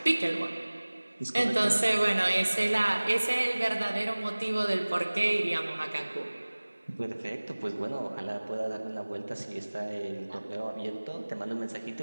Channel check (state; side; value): inverted; both; correlation -1.00